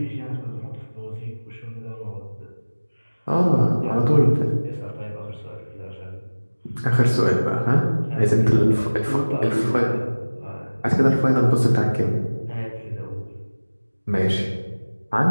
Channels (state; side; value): inverted; both; correlation -1.00